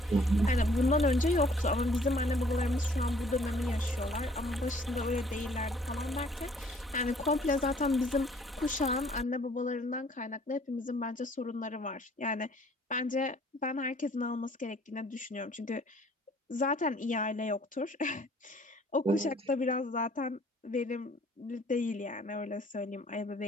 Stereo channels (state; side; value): normal; both; correlation 0.58